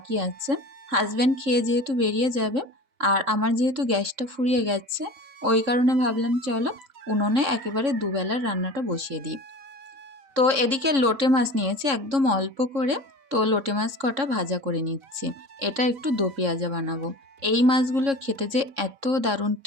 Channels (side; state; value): left; late; 3.6 ms